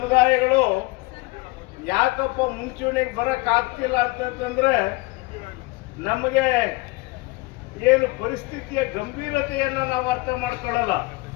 ಯಾಕಪ್ಪ ಮುಂಚೂಣಿಗೆ ಬರಕ್ ಆಗ್ತಿಲ್ಲ ಅಂತಂದ್ರೆ ನಮಗೆ ಏನು ಪರಿಸ್ಥಿತಿಯ ಗಂಭೀರತೆಯನ್ನು ನಾವು ಅರ್ಥ ಮಾಡ್ಕೊಳ್ಳಲ್ಲ.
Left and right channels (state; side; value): quieter; right; 23.4 dB